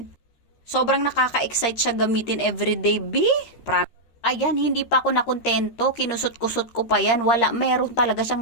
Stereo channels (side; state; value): right; late; 13 ms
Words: Sobrang nakaka-excite siya gamitin everyday. Ayan, hindi pa ako nakontento. Kinusot-kusot ko pa yan. Wala, meron talaga